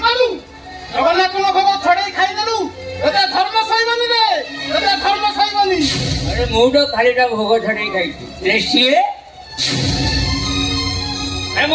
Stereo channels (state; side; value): identical; both; correlation 1.00